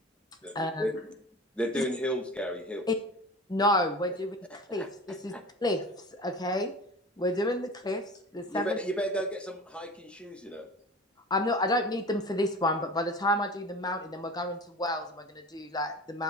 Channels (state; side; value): normal; both; correlation 0.36